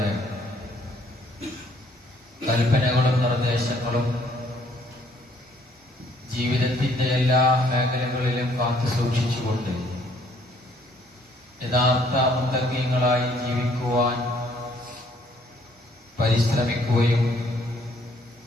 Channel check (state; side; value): normal; both; correlation 0.64